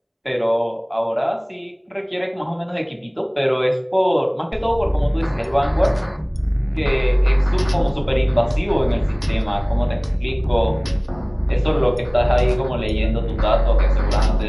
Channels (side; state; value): both; identical; correlation 1.00